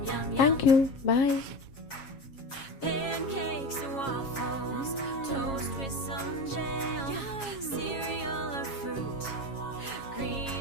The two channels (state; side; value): late; right; 7.3 ms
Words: Thank you, bye. Pancakes and waffles, toast with some jam, cereal or fruit,